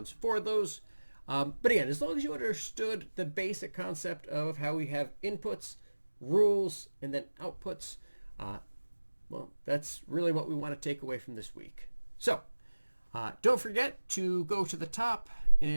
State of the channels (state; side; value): inverted; both; correlation -1.00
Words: for those. But again, as long as you understood the basic concept of how we have inputs, rules, and then outputs, well, that's really what we want to take away from this week. So don't forget to go to the top